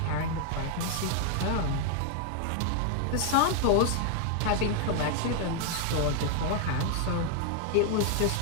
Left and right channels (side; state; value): both; different; correlation 0.00